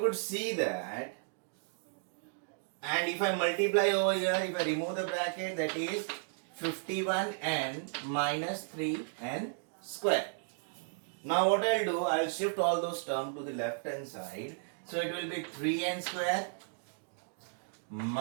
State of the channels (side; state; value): left; silent; digital silence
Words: see that, and if I multiply over here, if I remove the bracket, that is 51n minus 3n square. Now what I'll do, I'll shift all those terms to the left hand side. So it will be 3n square